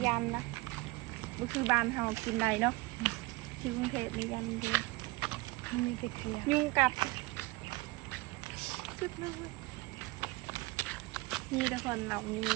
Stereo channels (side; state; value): left; quieter; 22.7 dB